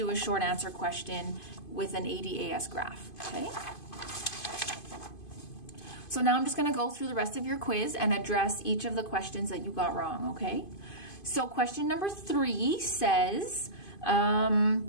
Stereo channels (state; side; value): late; right; 2.5 ms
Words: a short answer question with an ADAS graph, okay? So now I'm just going to go through the rest of your quiz and address each of the questions that you got wrong, okay? So question number 3 says,